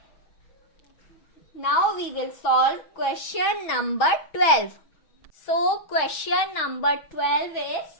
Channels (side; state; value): right; late; 6.2 ms